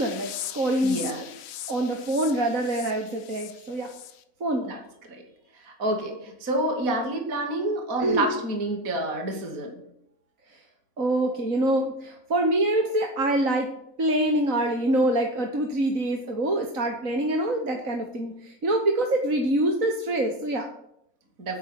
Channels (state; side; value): late; left; 3.9 ms